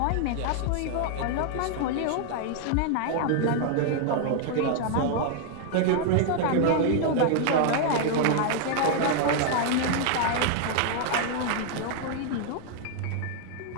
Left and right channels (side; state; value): both; different; correlation 0.00